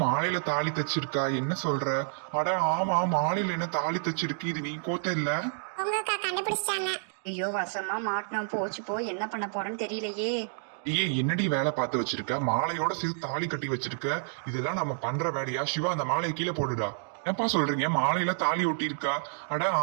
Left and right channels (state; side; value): silent; left; digital silence